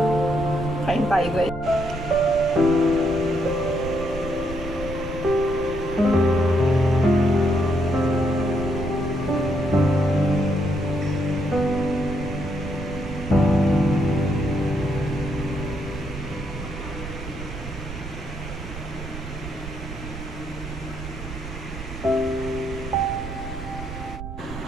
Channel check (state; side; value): noise; right; rumble, 9 dB below the sound